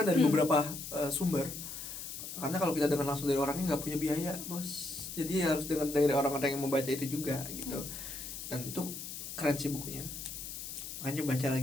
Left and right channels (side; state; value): left; noise; hiss, 8 dB below the sound